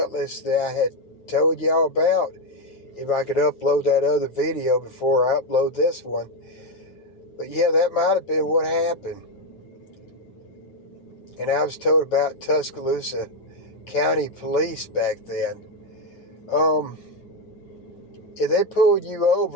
that I had told y'all about. If I could upload that other video before I upload this one. But yeah, that might have been what happened. And I was told about Tuscaloosa County Police back then. If they pulled you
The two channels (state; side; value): late; right; 9.1 ms